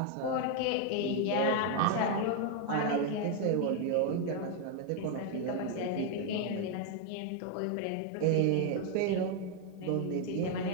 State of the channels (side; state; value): both; different; correlation 0.01